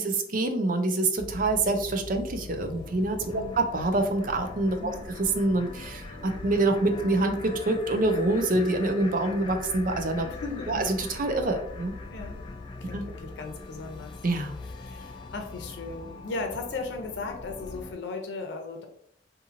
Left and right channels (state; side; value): normal; both; correlation 0.43